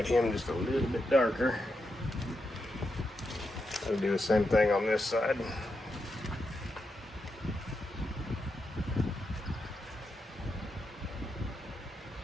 him just a little bit darker. I'll do the same thing on this side.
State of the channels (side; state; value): both; normal; correlation 0.85